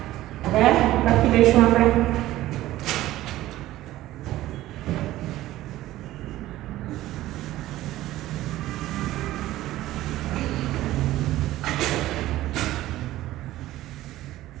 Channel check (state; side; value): quieter; left; 15.4 dB